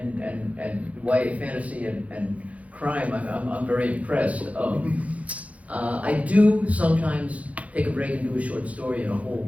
YA fantasy and crime, I'm very impressed. I do sometimes take a break and do a short story in a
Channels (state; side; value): late; left; 0.067 ms